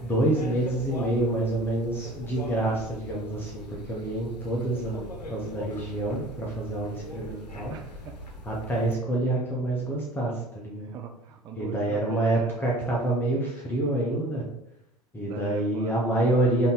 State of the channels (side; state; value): both; normal; correlation 0.47